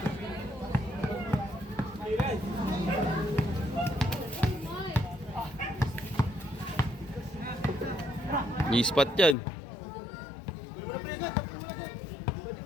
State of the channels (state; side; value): drops out; right; at 9.3 s